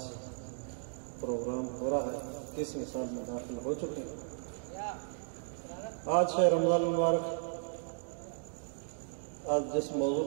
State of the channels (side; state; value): left; silent; digital silence